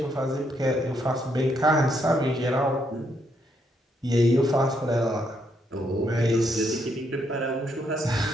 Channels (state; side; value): normal; both; correlation 0.75